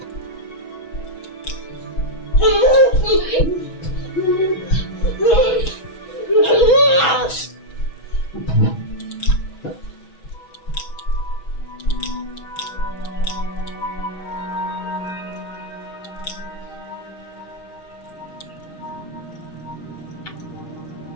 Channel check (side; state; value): right; late; 6.1 ms